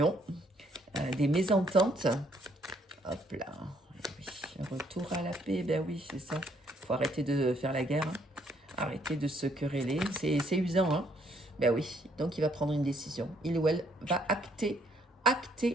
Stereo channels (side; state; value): both; normal; correlation 0.68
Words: des mésententes. Hop là, eh oui, retour à la paix, ben oui, c'est ça. Il faut arrêter de faire la guerre, hein. Arrêter de se quereller, c'est usant. Hein. Ben oui, donc il va prendre une décision. Il ou elle va acter